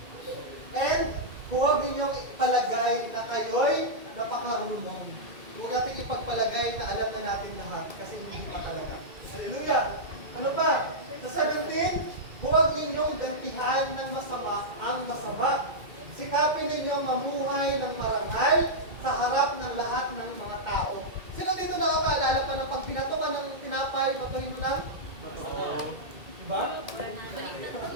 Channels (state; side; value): late; left; 2.4 ms